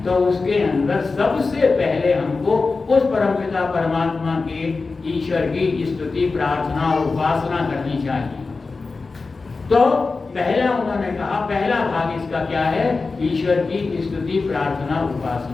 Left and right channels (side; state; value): right; quieter; 4.0 dB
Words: तो उसके अंदर सबसे पहले हमको उस परमपिता परमात्मा के, ईश्वर की स्तुति, प्रार्थना और उपासना करनी चाहिए। तो पहला उन्होंने कहा, पहला भाग इसका क्या है? ईश्वर की स्तुति, प्रार्थना,